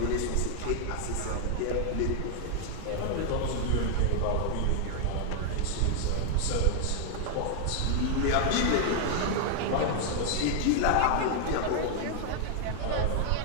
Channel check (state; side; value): different; both; correlation 0.00